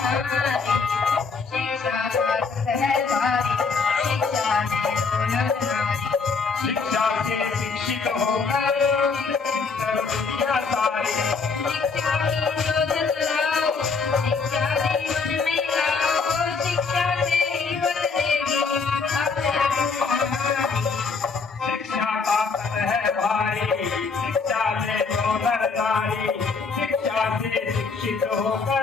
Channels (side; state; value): right; quieter; 4.8 dB